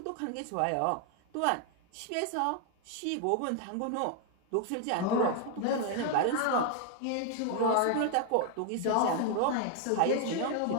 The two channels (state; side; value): different; both; correlation 0.01